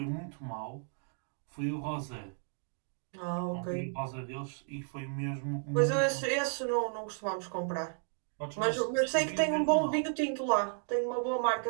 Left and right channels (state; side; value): silent; left; 55 dB below the other